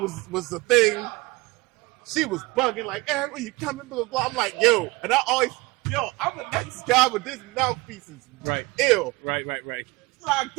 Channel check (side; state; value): left; quieter; 22.9 dB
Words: was the thing. She was bugging like, "Eric, when you coming?" Blah blah blah. I'm like, "Yo," and I always, I'm a nice guy, but this mouthpiece is right. ill. Right. Till I